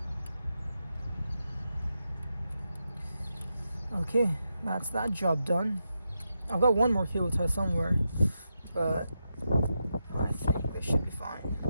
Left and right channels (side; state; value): both; inverted; correlation -0.86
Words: Okay, that's that job done. I've got one more cable tie somewhere, but I think this should be fine.